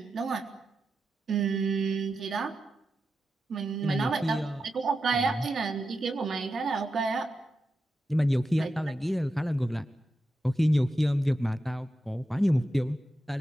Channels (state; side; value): normal; both; correlation 0.89